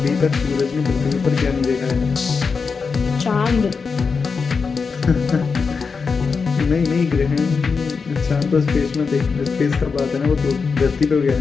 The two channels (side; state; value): right; quieter; 5.1 dB